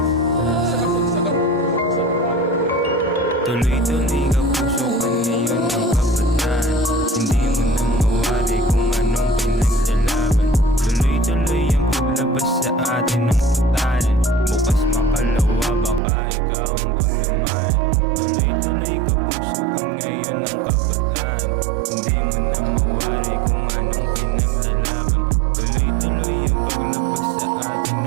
Sa kasagsagan sa tuloy-tuloy ka puso ka ngayon ng kabataan. Hindi mo na mawari kung anong pinaglalaban. Tuloy-tuloy ang paglabas sa atin ng putanan. Bukas makalawa baka ikaw ang paglamayan. Tuloy-tuloy ka puso ka ngayon ng kabataan. Hindi mo na mawari kung anong pinaglalaban. Tuloy-tuloy ang paglabas sa atin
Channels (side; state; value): left; drops out; at 16.0 s